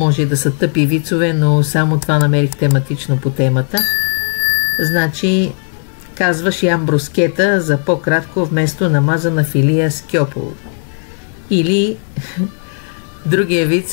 да са тъпи вицове, но само това намерих тематично по темата. Значи, казваш ям брускета за по-кратко вместо намазана филия с кьополо. Или другия виц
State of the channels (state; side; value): silent; right; 57 dB below the other